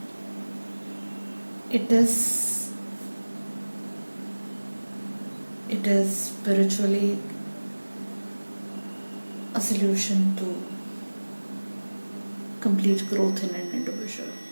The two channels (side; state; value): both; inverted; correlation -1.00